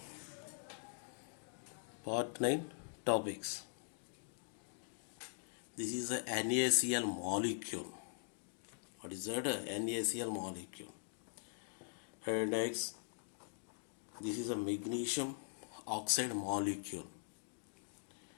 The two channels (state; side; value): silent; right; digital silence